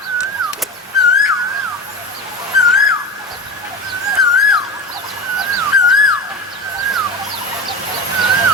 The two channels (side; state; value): both; normal; correlation 0.28